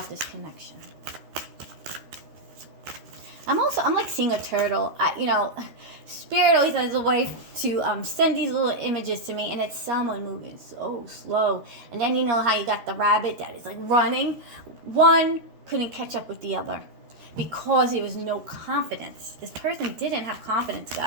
this connection? I'm like seeing a turtle. You know, Spirit always has a way to send these little images to me, and it's someone moving so slow. And then you know how you got the rabbit that is like running. One couldn't catch up with the other because there was no confidence. This person didn't have confidence,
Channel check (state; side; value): late; left; 13 ms